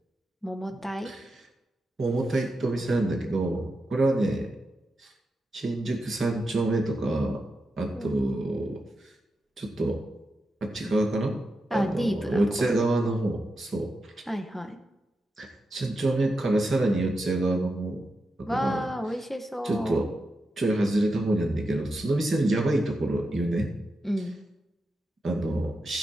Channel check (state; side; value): normal; both; correlation 0.88